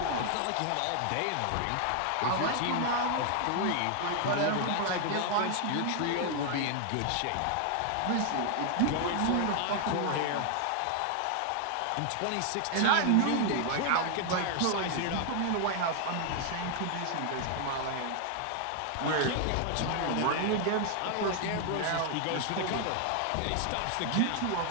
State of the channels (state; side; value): different; both; correlation 0.00